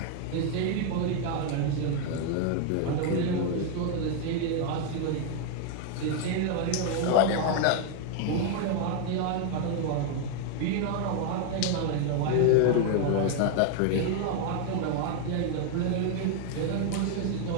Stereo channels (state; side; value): different; both; correlation 0.00